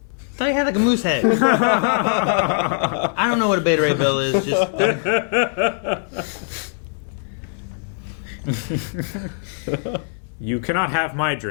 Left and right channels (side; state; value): right; silent; digital silence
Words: I thought he had like a moose head. I don't know what a Beta Ray Bill is. Just You cannot have my